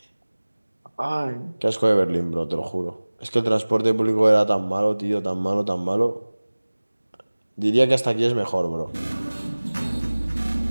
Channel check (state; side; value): inverted; both; correlation -1.00